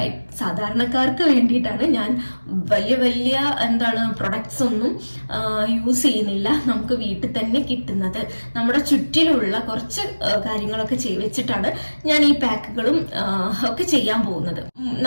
സാധാരണക്കാർക്ക് വേണ്ടിയിട്ടാണ് ഞാൻ വലിയ പ്രൊഡക്ട്സ് ഒന്നും യൂസ് ചെയ്യുന്നില്ല. നമുക്ക് വീട്ടിൽ തന്നെ കിട്ടുന്നത്, നമ്മുടെ ചുറ്റിലുള്ള കുറച്ച് കാര്യങ്ങളൊക്കെ വെച്ചിട്ടാണ് ഞാൻ ഈ പാക്കുകളും ഒക്കെ ചെയ്യാൻ പോകുന്നത്.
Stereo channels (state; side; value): inverted; both; correlation -1.00